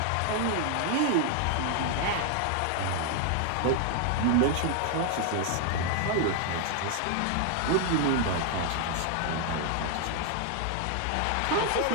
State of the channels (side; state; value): both; different; correlation 0.00